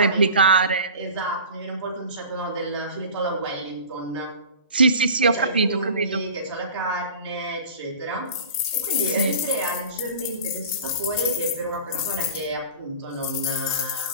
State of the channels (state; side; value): inverted; both; correlation -0.39